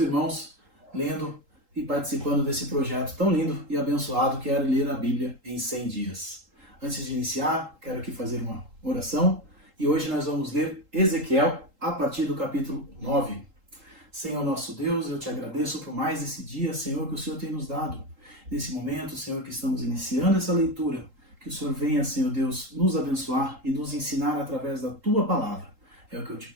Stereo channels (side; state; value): left; late; 3.8 ms